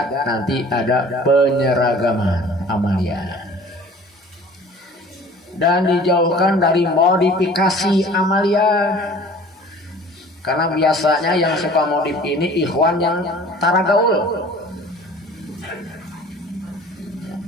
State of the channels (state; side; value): normal; both; correlation 0.47